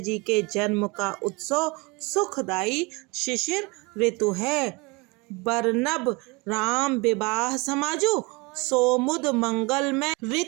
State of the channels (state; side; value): quieter; left; 27.0 dB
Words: के जन्म का उत्सव सुखदायी शिशिर ऋतु है। बरनब राम विवाह समाजु, सोमुद मंगल में